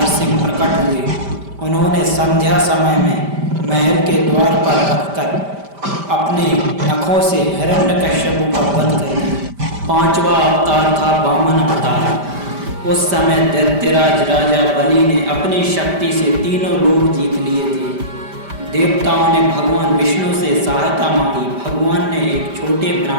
प्रकट हुए। उन्होंने संध्या समय में महल के द्वार पर रखकर अपने नखों से हिरण्यकश्यपु का वध कर दिया। पांचवा अवतार था वामन अवतार। उस समय दैत्यराज राजा बलि ने अपनी शक्ति से तीनों लोक जीत लिए थे। देवताओं ने भगवान विष्णु से सहायता मांगी। भगवान ने एक छोटे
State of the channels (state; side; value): late; left; 5.1 ms